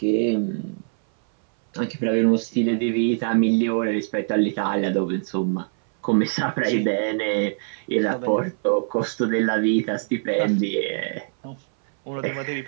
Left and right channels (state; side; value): silent; left; 61 dB below the other